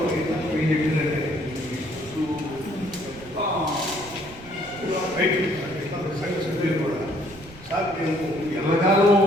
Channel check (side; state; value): right; noise; rumble, 20 dB below the sound